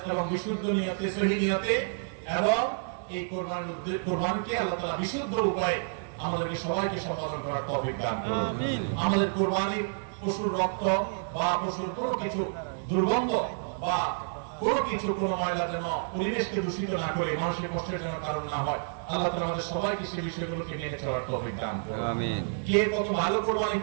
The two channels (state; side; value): silent; left; 58 dB below the other